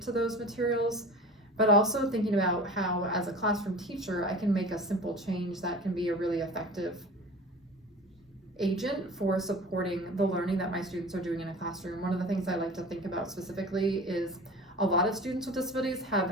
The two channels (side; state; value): both; normal; correlation 0.38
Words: to those materials, but also thinking about how, as a classroom teacher, I can make a simple change that can be a really effective agent for supporting the learning that my students are doing in a classroom. One of the things I like to think about specifically is a lot of students with disabilities have